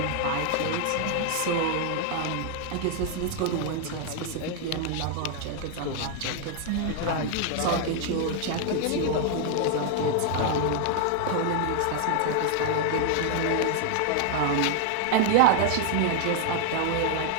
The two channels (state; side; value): different; both; correlation 0.00